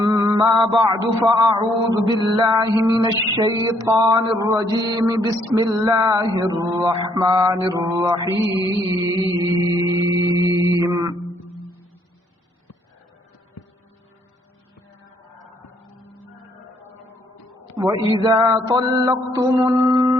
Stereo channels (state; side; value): normal; both; correlation 0.68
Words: بعد فأعوذ بالله من الشيطان الرجيم بسم الله الرحمن الرحيم وَإِذَا طَلَّقْتُمُ